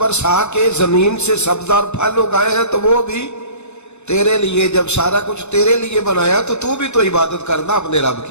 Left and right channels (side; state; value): right; late; 0.82 ms